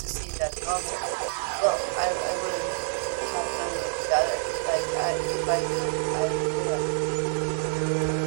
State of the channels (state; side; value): silent; left; digital silence